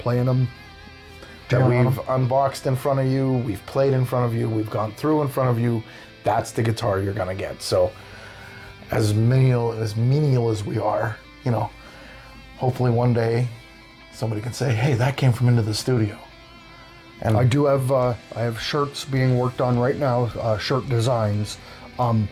them. That we've unboxed in front of you, we've played in front of you, we've gone through in front of you. That's the guitar you're gonna get. So, as menial as we are, hopefully one day somebody can say, "Hey, that came from Into the Studio." And I do have I have shirts being worked on right now, shirt designs.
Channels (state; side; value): identical; both; correlation 1.00